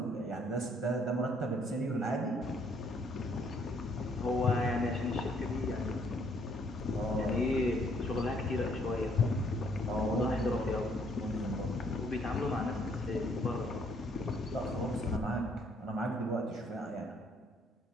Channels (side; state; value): both; normal; correlation 0.66